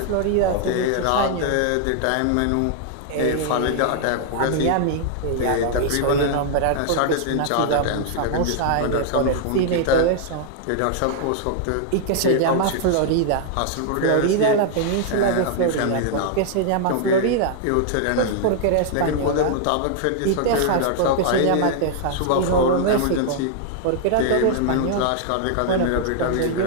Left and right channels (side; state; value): both; different; correlation -0.01